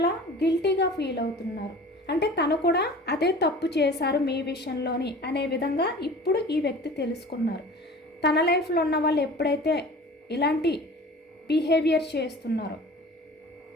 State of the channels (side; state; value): both; normal; correlation 0.42